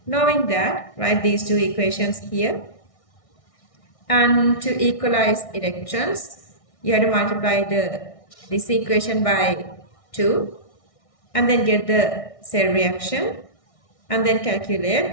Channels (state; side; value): late; right; 1.6 ms